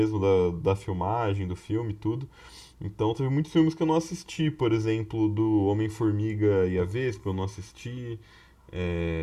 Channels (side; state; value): both; identical; correlation 1.00